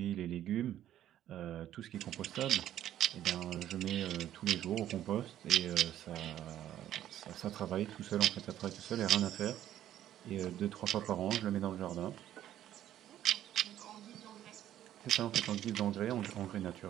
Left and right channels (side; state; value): left; quieter; 11.9 dB